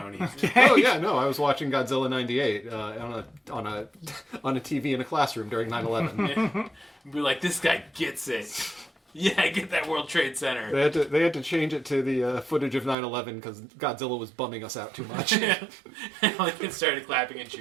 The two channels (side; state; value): left; drops out; at 13.0 s